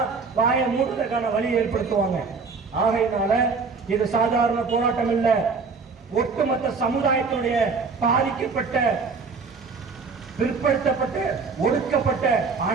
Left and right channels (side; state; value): left; quieter; 4.8 dB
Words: வாயை மூடுறதுக்கான வழி ஏற்படுத்துவாங்க. ஆகையினால இது சாதாரண போராட்டம் இல்ல, ஒட்டுமொத்த சமுதாயத்தினுடைய பாதிக்கப்பட்ட, பிற்படுத்தப்பட்ட, ஒடுக்கப்பட்ட